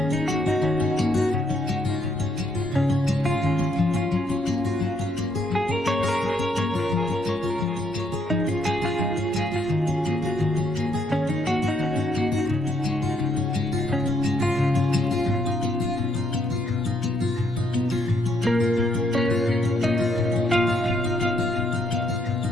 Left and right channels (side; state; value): both; normal; correlation 0.73